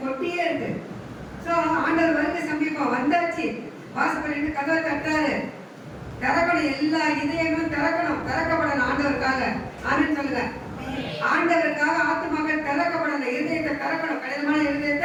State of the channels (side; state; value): both; identical; correlation 1.00